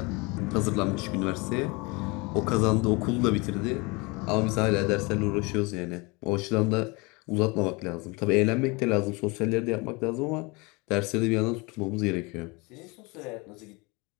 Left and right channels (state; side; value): quieter; right; 27.1 dB